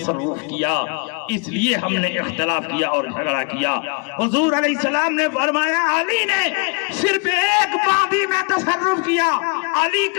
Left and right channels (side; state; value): right; quieter; 34.0 dB